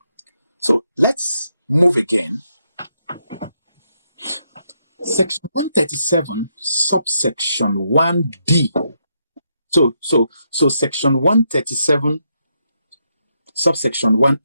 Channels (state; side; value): inverted; both; correlation -0.79